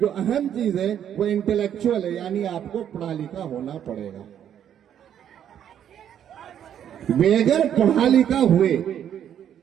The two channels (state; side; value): quieter; left; 9.7 dB